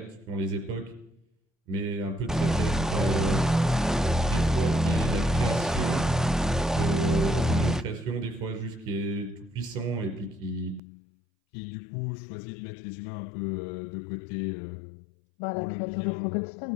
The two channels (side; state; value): right; drops out; at 10.8 s